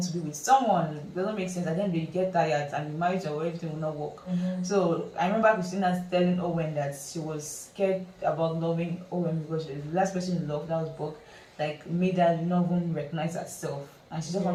to be with someone. It doesn't make sense. At the end you get tired and the marriage or everything will not work. So I remember Christina telling Owen that she was scared about loving Owen because the last person in love, that was Bob, made her not even recognize herself, and she just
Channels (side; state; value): both; identical; correlation 1.00